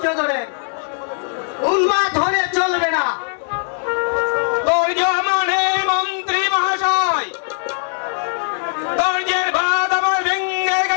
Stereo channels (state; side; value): silent; right; digital silence